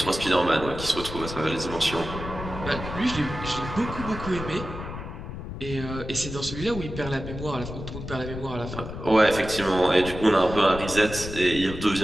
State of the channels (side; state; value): left; noise; rumble, 9 dB below the sound